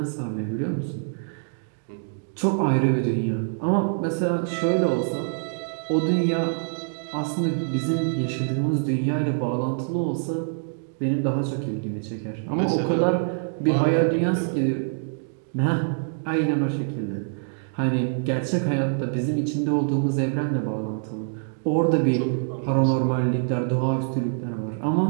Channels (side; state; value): left; silent; digital silence